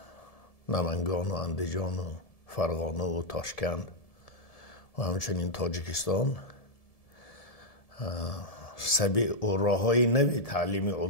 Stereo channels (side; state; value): right; late; 1.7 ms